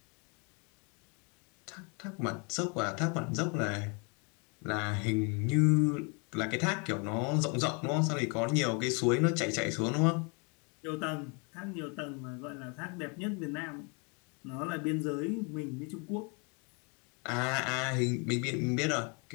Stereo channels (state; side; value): quieter; right; 34.1 dB